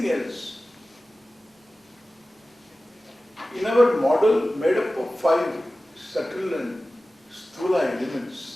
else. In our model made up of 5 subtle and sthula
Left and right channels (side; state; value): both; normal; correlation 0.96